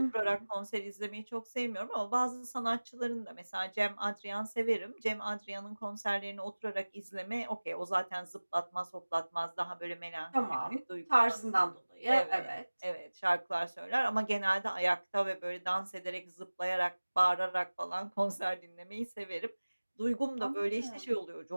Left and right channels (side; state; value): both; inverted; correlation -1.00